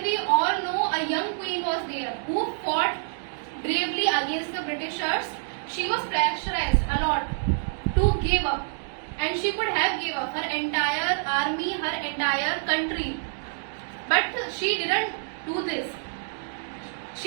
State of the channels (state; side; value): silent; left; digital silence